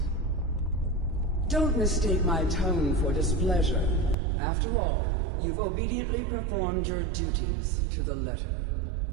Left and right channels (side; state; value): left; drops out; at 4.2 s